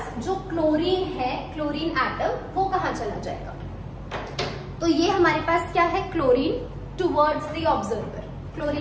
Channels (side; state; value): both; identical; correlation 1.00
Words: जो क्लोरीन है, क्लोरीन एटम, वो कहाँ चला जाएगा। तो ये हमारे पास क्या है, chlorine towards the observer,